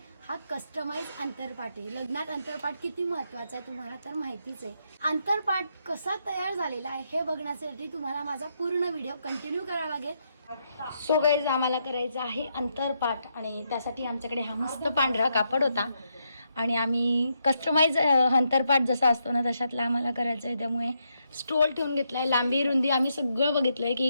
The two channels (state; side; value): inverted; both; correlation -0.80